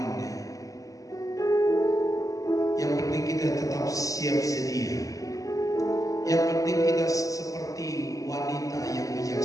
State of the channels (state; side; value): late; right; 0.17 ms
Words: Yang penting kita tetap siap sedia. Yang penting kita seperti wanita yang